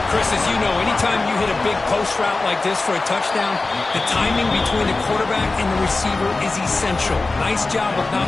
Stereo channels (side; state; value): right; quieter; 3.4 dB